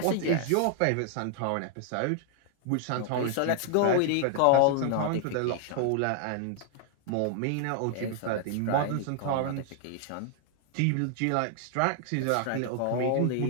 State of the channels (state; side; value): different; both; correlation 0.00